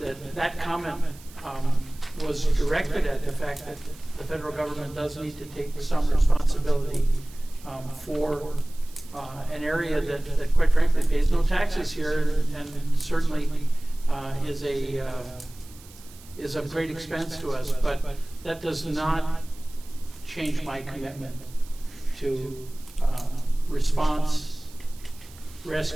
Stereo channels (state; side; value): noise; right; hiss, 22 dB below the sound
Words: comment was directed at the fact that the federal government does need to take some responsibility for an area that quite frankly pays no taxes here, and certainly is of great expense to us, but that does not change my commitment to response,